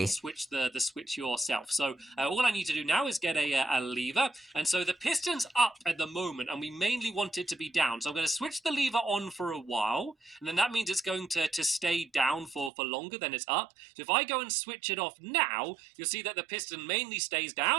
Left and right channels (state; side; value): drops out; left; at 12.7 s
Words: Switch the switch yourself. So all I need to do now is get a lever, and so the piston's up at the moment, and we mainly want it to be down. So I'm going to switch the lever on for a while, and then that means it's going to stay down for longer than it's up. So if I go and switch it off now, you'll see that the piston mainly stays